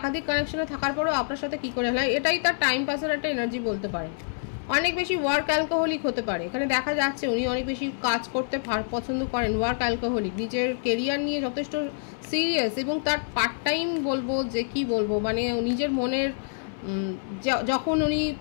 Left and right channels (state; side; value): silent; right; 60 dB below the other